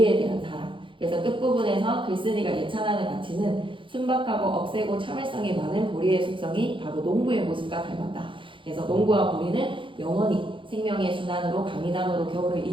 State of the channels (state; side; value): late; left; 0.25 ms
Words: 대한 사랑. 그래서 끝부분에서 글쓴이가 예찬하는 가치는 순박하고 억세고 참을성이 많은 보리의 속성이 바로 농부의 모습과 닮았다. 그래서 농부와 보리는 영원히 생명의 순환으로 강인함으로 겨울을